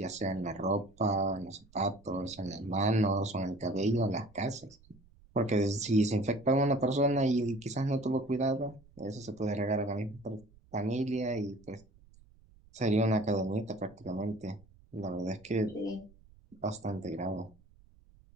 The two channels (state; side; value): noise; right; rumble, 27 dB below the sound